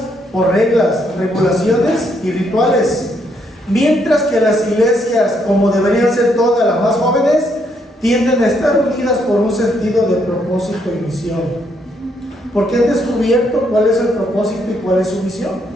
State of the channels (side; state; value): both; normal; correlation 0.74